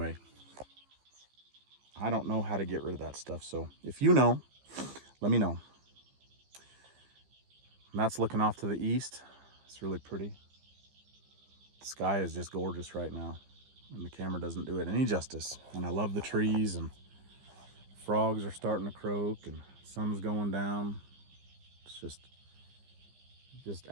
I don't know how to get rid of that stuff. So if you know, let me know. And that's looking off to the east. It's really pretty. The sky is just gorgeous right now, and the camera doesn't do it any justice. And I love the trees, and frogs are starting to croak, and sun's going down. It's just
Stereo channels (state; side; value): late; left; 15 ms